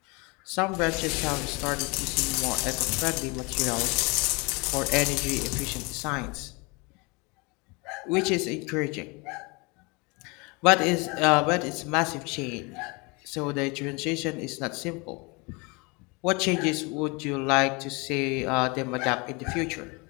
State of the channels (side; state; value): right; quieter; 28.5 dB